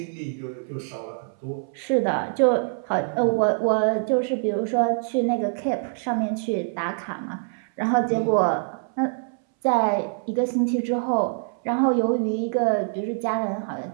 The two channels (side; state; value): left; silent; 62 dB below the other